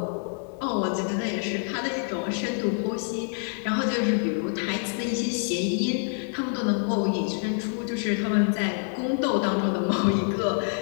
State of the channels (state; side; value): silent; right; 60 dB below the other